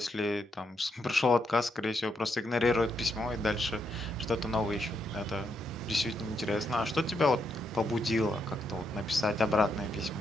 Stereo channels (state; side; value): normal; both; correlation 0.79